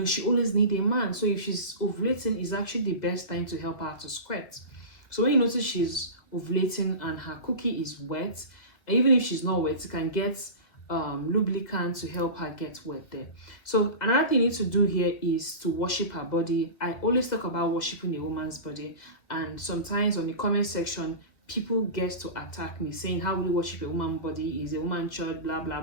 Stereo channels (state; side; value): late; right; 2.0 ms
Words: always needs a man. So if she's ovulating, it's actually the best time to help her to squirt. So when you notice she's ovulating and her cookie is wet, even if she's not wet, you can get lubricant to help her get wet there. So another thing you need to do here is to worship her body. I always talk about worshiping a woman's body, and sometimes on the comment section people get to attack me saying, how will you worship a woman's body? Is a woman church, blah blah